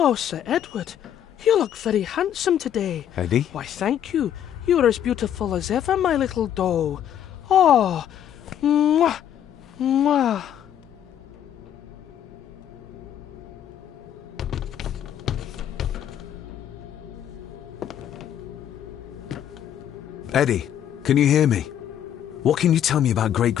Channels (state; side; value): quieter; right; 10.2 dB